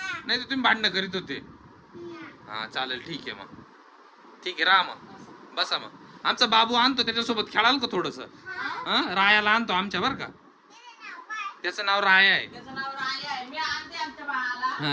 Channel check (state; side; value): identical; both; correlation 1.00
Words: नाही तर तुम्ही भांडणं करीत होते. हा चालेल, ठीक आहे मग. ठीक आहे, राहा मग, बसा मग. आमचा बाबू आणतो, त्याच्यासोबत खेळाल का थोडस? रायाला आणतो आमच्या बर का. त्याचं नाव राया आहे.